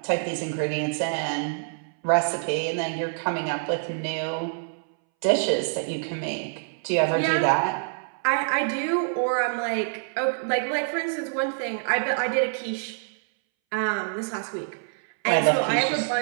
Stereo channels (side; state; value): left; silent; 61 dB below the other